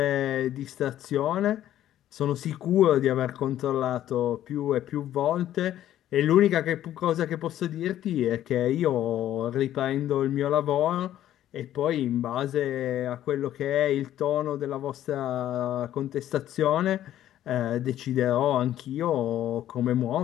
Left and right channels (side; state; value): right; quieter; 12.3 dB